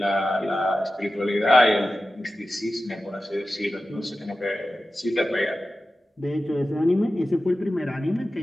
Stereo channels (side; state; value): both; normal; correlation 0.94